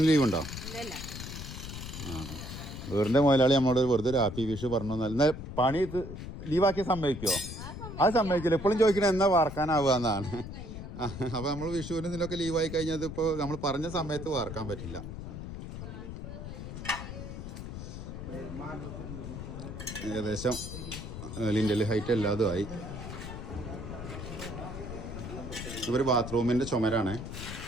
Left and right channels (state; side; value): noise; left; rumble, 9 dB below the sound